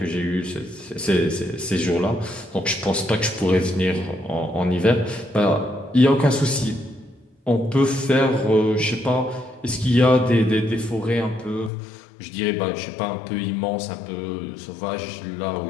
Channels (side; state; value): right; drops out; at 11.7 s